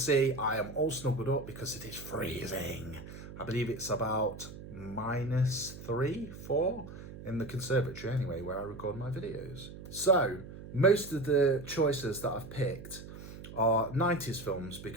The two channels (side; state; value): right; noise; hum, 13 dB below the sound